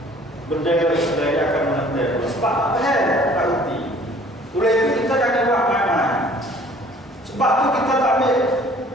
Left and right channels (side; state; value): both; normal; correlation 0.54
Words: bendera Islam yang akan menetek sebab apa tak kerti. Oleh itu kita jangan buat main-main. Sebab tu kita tak